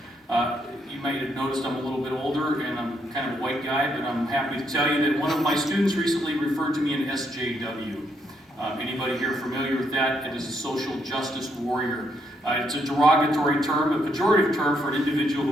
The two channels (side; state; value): both; normal; correlation 0.75